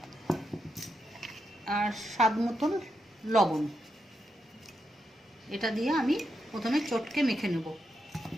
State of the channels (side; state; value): both; normal; correlation 0.84